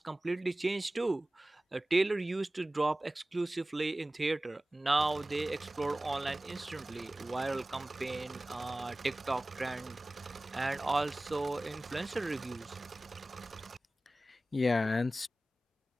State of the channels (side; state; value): both; normal; correlation 0.97